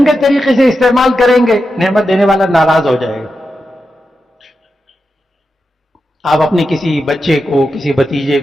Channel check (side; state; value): both; normal; correlation 0.89